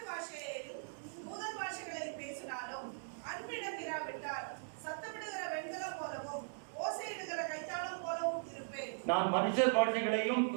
பாஷையிலும் தூதர் பாஷைகளில் பேசினாலும் அன்பிடம் இராவிட்டால் சத்தமிடுகிற வெண்கலம் போலவும் ஓசையிடுகிற கைத்தாளம் போலவும் இருப்பேன். நான் மனுஷர் பாஷைகளையும்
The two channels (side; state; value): left; silent; digital silence